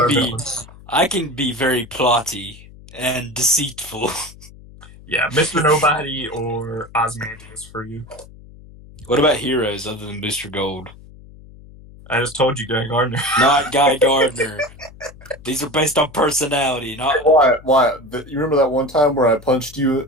be. villains. I can be very plotty and deceitful. Yeah, Mr. Nobody or Ozymandias for you. What about heroes other than Booster Gold? I just told you, Guy Gardner. Not Guy Gardner. These are based on personality, not. Why? You remember that one time where I punched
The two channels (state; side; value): noise; left; hum, 20 dB below the sound